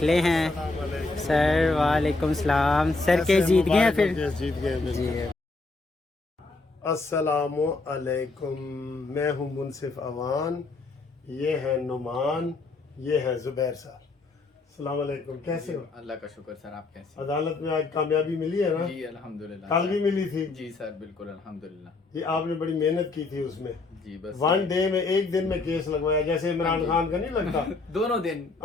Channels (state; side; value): quieter; right; 3.5 dB